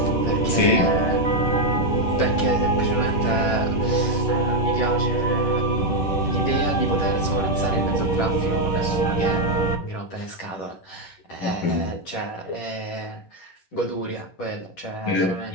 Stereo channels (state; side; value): late; right; 10 ms